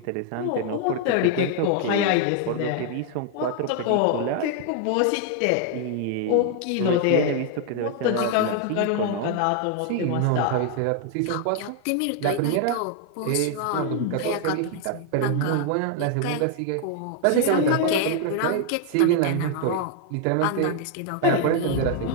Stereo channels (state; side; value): different; both; correlation 0.00